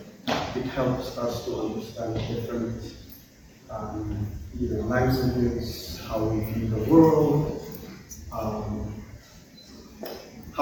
It helps us to understand different languages, how we view the world,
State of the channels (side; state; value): both; identical; correlation 1.00